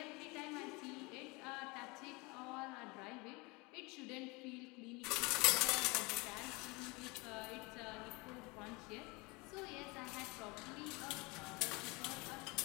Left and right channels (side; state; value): right; quieter; 26.2 dB